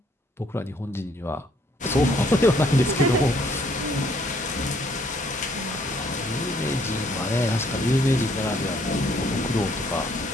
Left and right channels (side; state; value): both; normal; correlation 0.65